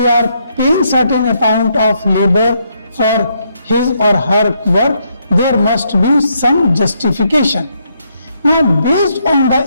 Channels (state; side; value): inverted; both; correlation -0.75